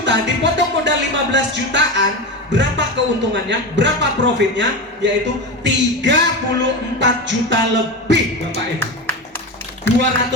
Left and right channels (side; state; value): both; normal; correlation 0.21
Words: dipotong modal 15 jutaan, berapa keuntungannya? Berapa profitnya? Yaitu 34 juta lebih, Bapak Ibu.